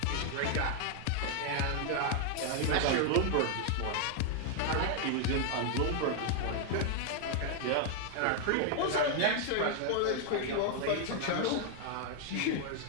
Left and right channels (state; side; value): different; both; correlation 0.00